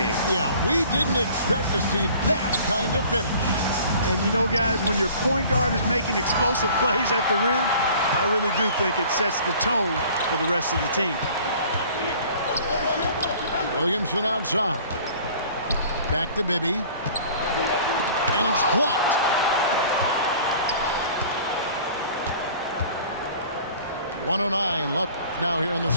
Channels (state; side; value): inverted; both; correlation -0.49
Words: Yeah, we didn't expect to see that kind of finish. And you know, guys, when your point guard is making explosive plays at the rim, I really do think it sets the tone for the rest of the team. Williamson outside. Back to Bibby. And it's blocked. .109 left now here in the